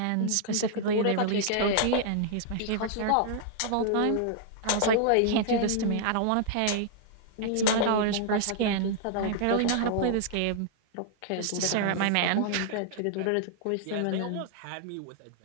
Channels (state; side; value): different; both; correlation -0.01